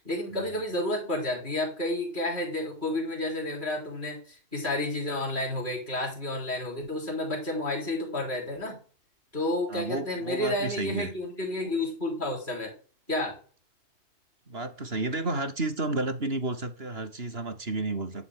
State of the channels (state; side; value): late; left; 2.9 ms